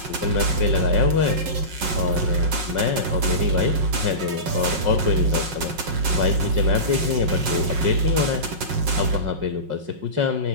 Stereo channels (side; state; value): left; late; 5.5 ms